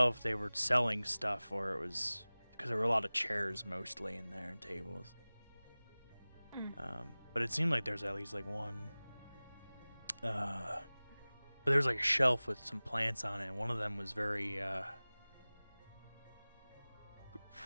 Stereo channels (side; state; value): both; inverted; correlation -0.99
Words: if they were selling stuff or it was because there were a lot of chairs mostly in there and tables. But it seemed like there's at least like one. But there was like a shelf with some plants on it, and one of them was very what